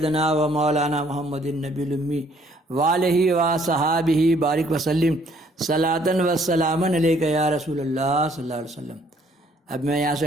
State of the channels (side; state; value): both; normal; correlation 0.63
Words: و مولانا محمد النبی الامی وآلہ و صحابہ بارک وسلم صلاۃ و سلاما علیک یا رسول اللہ صلی اللہ علیہ وسلم۔ اب میں یہاں